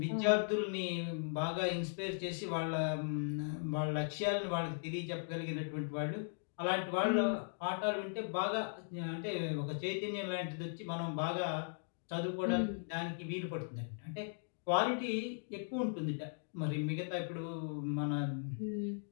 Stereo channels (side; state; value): right; silent; digital silence